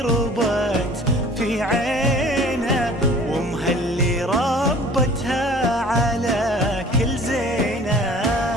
ربت في عينه، وامها اللي ربتها على كل زينه.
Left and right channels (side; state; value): both; normal; correlation 0.48